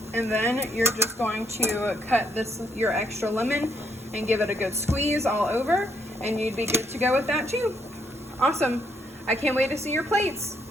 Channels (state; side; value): normal; both; correlation 0.73